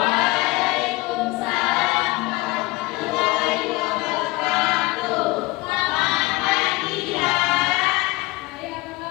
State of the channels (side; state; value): right; quieter; 21.8 dB